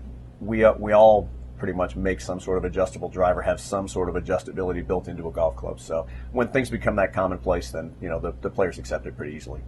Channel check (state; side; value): identical; both; correlation 1.00